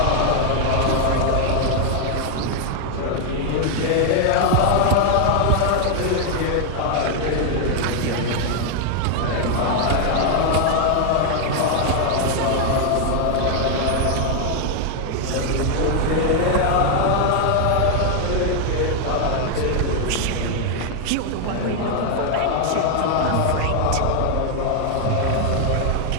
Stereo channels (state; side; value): different; both; correlation 0.00